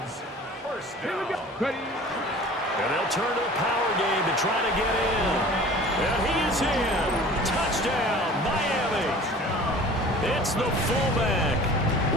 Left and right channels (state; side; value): normal; both; correlation 0.44